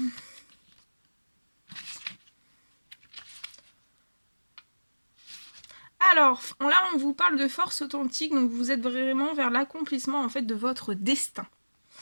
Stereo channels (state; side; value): inverted; both; correlation -1.00